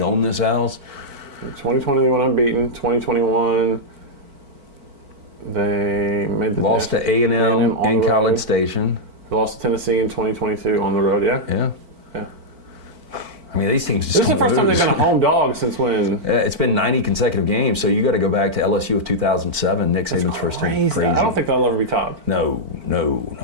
own this house. 2020 they went unbeaten. 2021... they made the lost to A&M in College Station. They lost to Tennessee in 2022 on the road. Yeah. I mean, these teams just this is the first time they've been a home dog since when? It's been 90 consecutive games, so you got to go back to LSU of 2007, Nick Saban's first team. Crazy. I don't think they'll ever be topped. No.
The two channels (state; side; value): late; left; 4.5 ms